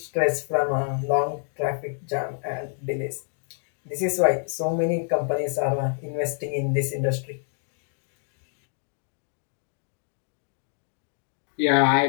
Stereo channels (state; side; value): silent; right; digital silence